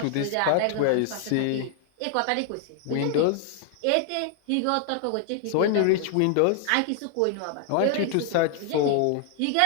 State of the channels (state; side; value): different; both; correlation 0.00